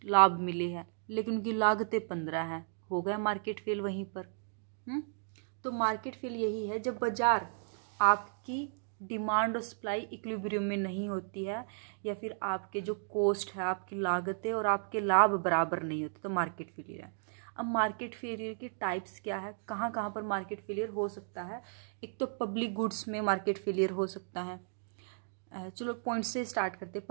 लाभ मिले हैं लेकिन उनकी लागतें 15 हैं, हो गया मार्केट फेल वहीं पर। तो मार्केट फेल यही है जब बाजार आपकी डिमांड और सप्लाई इक्विलिब्रियम में नहीं होती है, या फिर आपके जो कॉस्ट है, आपकी लागतें और आपके लाभ बराबर नहीं होते, तो मार्केट फेलियर है। अब मार्केट फेलियर के टाइप्स क्या है, कहाँ कहाँ पर मार्केट फेलियर हो सकता है। एक तो पब्लिक गुड्स में मार्केट फेलियर हो सकता है। चलो पॉइंट से स्टार्ट करते हैं।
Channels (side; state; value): left; silent; digital silence